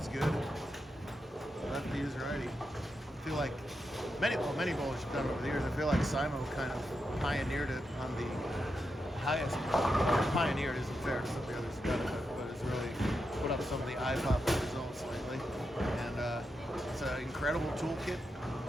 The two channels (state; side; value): normal; both; correlation 0.86